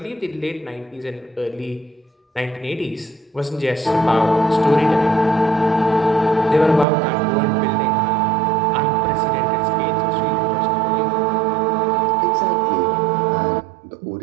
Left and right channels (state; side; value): drops out; left; at 6.9 s